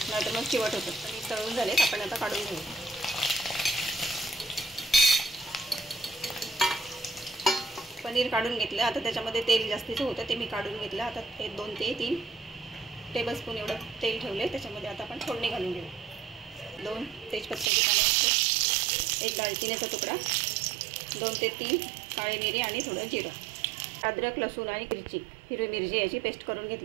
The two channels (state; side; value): drops out; left; at 17.7 s